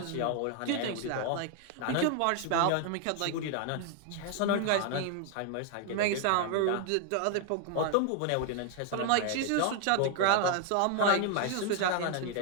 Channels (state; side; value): different; both; correlation 0.00